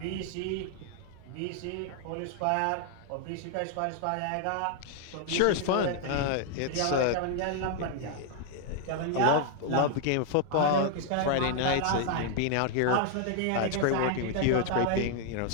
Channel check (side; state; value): both; different; correlation 0.00